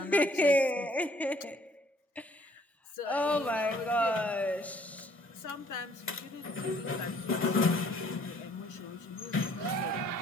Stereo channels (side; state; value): both; normal; correlation 0.61